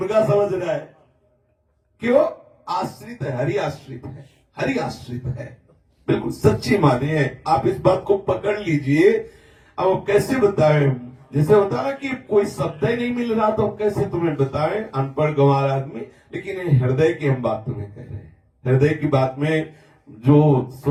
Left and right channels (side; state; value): both; identical; correlation 1.00